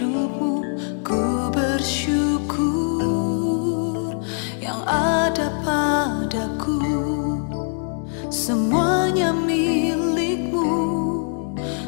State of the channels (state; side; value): silent; right; 57 dB below the other